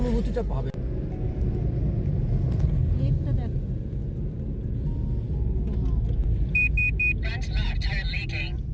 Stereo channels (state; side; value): identical; both; correlation 1.00